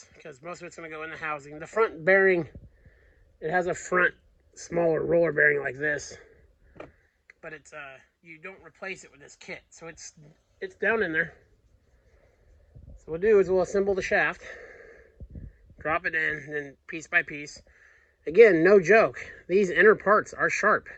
because most of it's going to go in the housing. The front bearing, it has a front smaller roller bearing like this, but it's you don't replace it with this kit, so it's down in there. So what we'll do is we'll assemble the shaft, drop it in, and then piece by piece. Again, no joke, these inner parts are sharp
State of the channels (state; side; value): identical; both; correlation 1.00